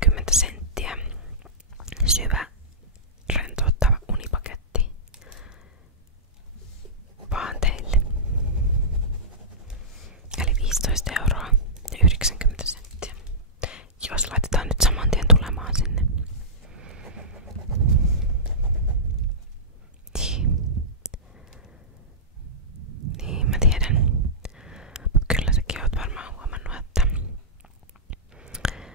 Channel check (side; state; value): both; normal; correlation -0.16